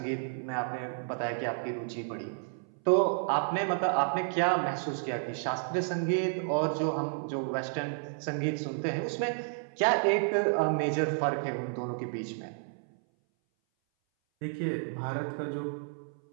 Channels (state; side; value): silent; left; 57 dB below the other